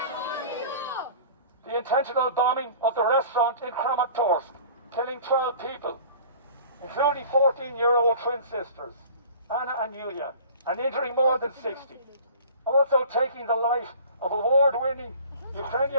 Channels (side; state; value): both; inverted; correlation -0.45